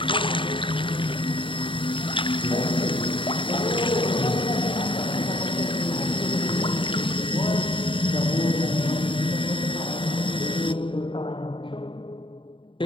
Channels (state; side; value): late; right; 0.25 ms